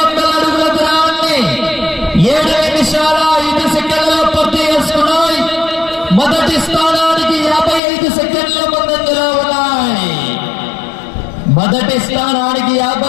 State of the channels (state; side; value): drops out; right; at 7.8 s